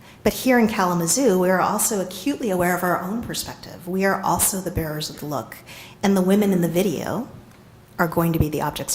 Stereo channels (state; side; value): identical; both; correlation 1.00